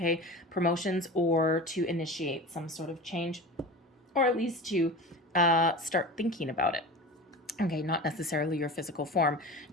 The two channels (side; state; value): both; normal; correlation 0.32